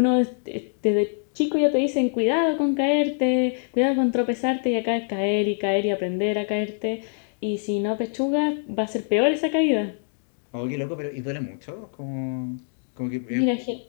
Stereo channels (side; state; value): right; silent; digital silence